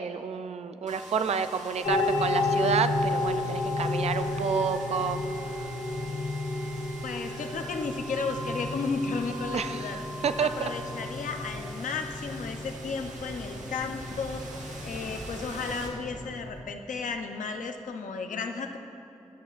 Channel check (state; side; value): normal; both; correlation 0.54